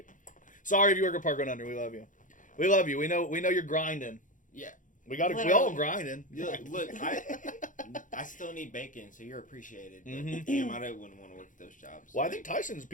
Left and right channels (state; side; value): late; right; 0.38 ms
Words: Sorry if you work at Park 100. We love you. We love you. We know you're grinding. Yeah. We all Literally. grinding. Look, I still need bacon, so you're appreciated. But Mhm. damn, I wouldn't want to work at those jobs. Well, I think Tyson's